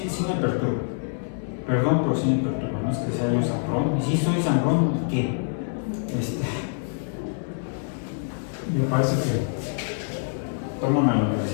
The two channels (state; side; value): silent; right; digital silence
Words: me perturba. Perdón, pero sí me perturba. No es que sea yo sangrón. Y sí soy sangrón, ¿qué? Me parece que toman a la